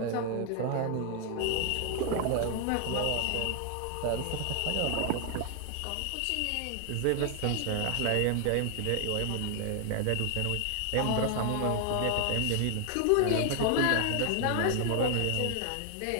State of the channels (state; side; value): different; both; correlation 0.00